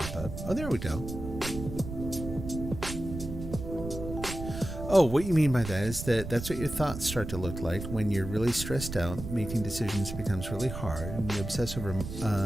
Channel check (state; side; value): noise; right; rumble, 8 dB below the sound